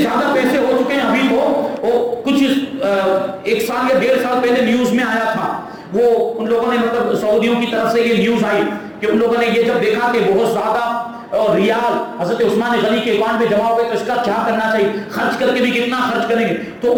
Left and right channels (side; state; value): both; identical; correlation 1.00